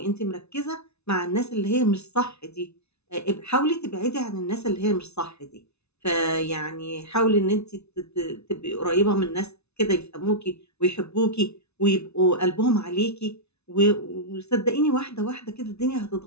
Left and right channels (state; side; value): late; right; 0.81 ms